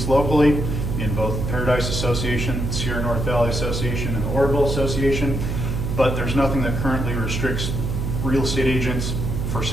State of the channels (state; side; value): noise; right; hum, 2 dB below the sound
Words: locally in both Paradise Association, Sierra North Valley Association, and the Orville Association, but there's nothing that currently restricts real estate agents for